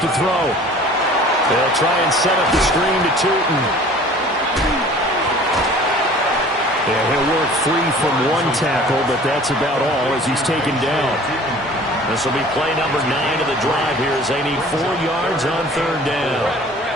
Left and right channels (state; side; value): normal; both; correlation 0.47